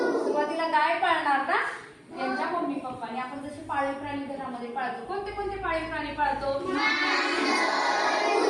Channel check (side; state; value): both; identical; correlation 1.00